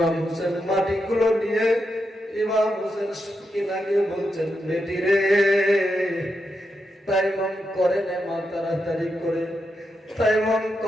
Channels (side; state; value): both; normal; correlation 0.85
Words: হোসেন মাটিগুলো নিয়ে ইমাম হোসেন সকিনাকে বলছেন, বেটি রে, তাইবাম করে নে মা, তাড়াতাড়ি করে। তাইবাম